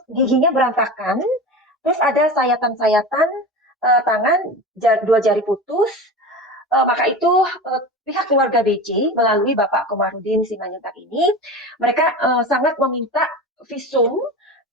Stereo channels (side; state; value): both; normal; correlation 0.29